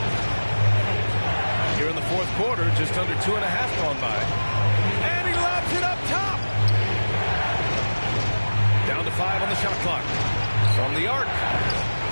Here in the fourth quarter, just under 2.5 gone by. And he lobs it up top. Down to 5 on the shot clock. From the arc.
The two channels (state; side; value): inverted; both; correlation -1.00